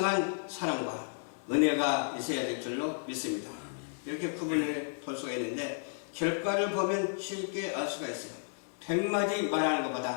사랑과 은혜가 있어야 될 줄로 믿습니다. 이렇게 구분을 볼 수가 있는데 결과를 보면 쉽게 알 수가 있어요. 100마디 말하는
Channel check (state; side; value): silent; right; 56 dB below the other